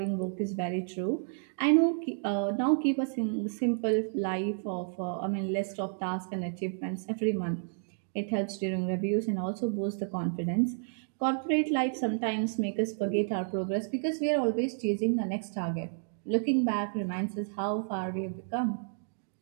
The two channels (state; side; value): silent; left; digital silence